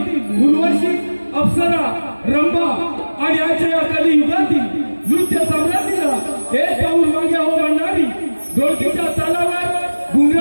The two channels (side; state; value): both; inverted; correlation -1.00